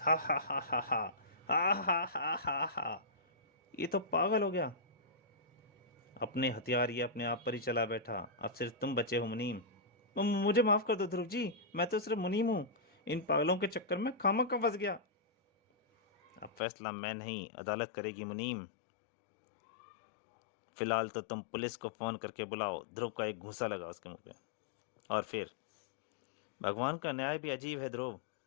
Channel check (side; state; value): right; drops out; at 16.6 s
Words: हा हा हा हा हा हा हा हा हा हा। ये तो पागल हो गया। अपने हथियार ये अपने आप पर ही चला बैठा। अब सिर्फ तुम बचे हो मुनीम। मुझे माफ कर दो ध्रुव जी, मैं तो सिर्फ मुनीम हूँ। इन पागलों के चक्कर में खामखा फंस गया। अब फैसला मैं नहीं, अदालत करेगी मुनीम। फिलहाल तो तुम पुलिस को फोन करके बुलाओ। ध्रुव का एक घूंसा लगा उसके मुंह पे। और फिर भगवान का न्याय भी अजीब है ध्रुव।